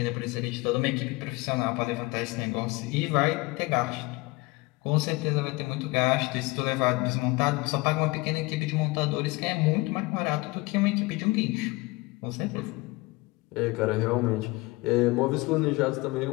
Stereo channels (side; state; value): right; quieter; 23.5 dB